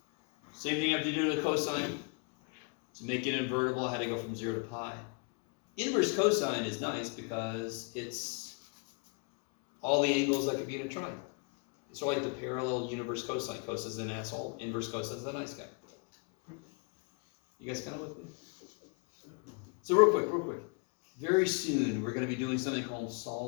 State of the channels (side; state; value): right; quieter; 35.6 dB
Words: Same thing I have to do to the cosine. To make it invertible, I had to go from 0 to pi. Inverse cosine is nice because it's all the angles that could be in a triangle. It's sort of like the parallel universe cosine. Cos is an asshole. Inverse cosine is a nice guy. You guys kind of with me? So real quick. Very soon, we're going to be doing something called